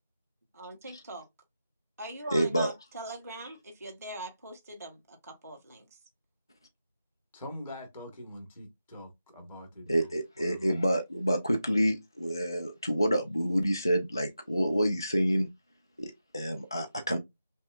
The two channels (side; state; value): both; inverted; correlation -0.90